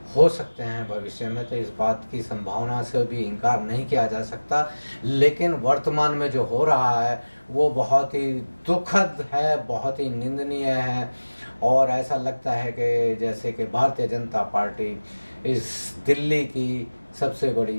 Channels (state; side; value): inverted; both; correlation -1.00